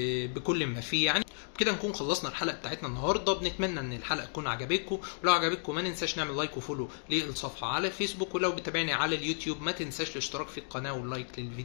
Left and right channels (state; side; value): silent; right; digital silence